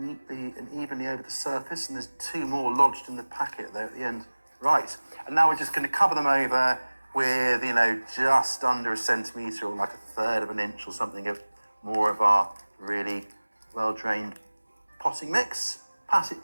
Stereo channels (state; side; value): inverted; both; correlation -1.00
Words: and evenly over the surface, and there's 2 more lodged in the packet there at the end. Right, and now we're just going to cover them over with, just under 1 centimetre or like 1/3 of an inch or something of more of our really well-drained potting mix. Pat it